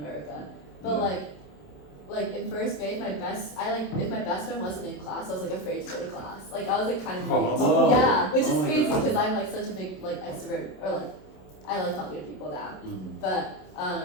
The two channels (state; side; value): late; right; 27 ms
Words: But Yeah. like in first grade, if my best friend wasn't in class, I was like afraid to go to class. Like I was like kind of weird. Whoa. Yeah, which is Oh my crazy God. because I'm like such a big like extrovert, or like I like talking to people now. Mhm. But